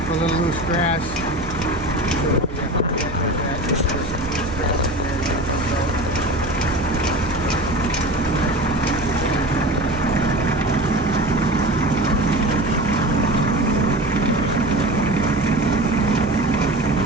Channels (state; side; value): noise; right; hum, 12 dB below the sound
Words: a little loose grass.